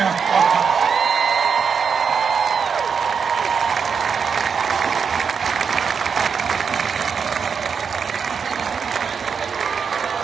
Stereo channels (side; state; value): left; quieter; 6.2 dB